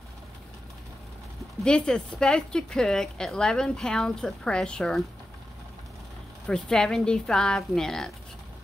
this is supposed to cook at 11 pounds of pressure for 75 minutes.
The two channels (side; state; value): both; normal; correlation 0.91